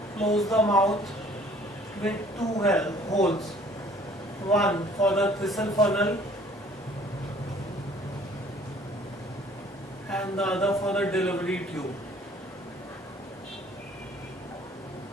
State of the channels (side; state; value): both; normal; correlation 0.55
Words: Close the mouth with 2 holes, one for the thistle funnel and the other for the delivery tube.